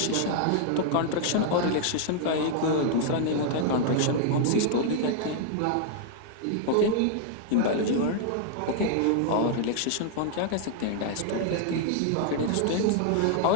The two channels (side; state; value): both; different; correlation -0.01